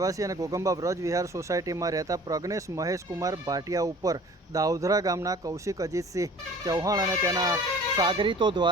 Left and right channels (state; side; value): normal; both; correlation 0.47